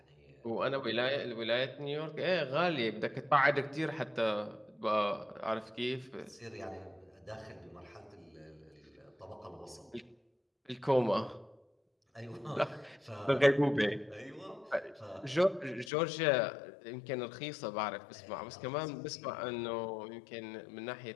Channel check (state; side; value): drops out; right; at 15.9 s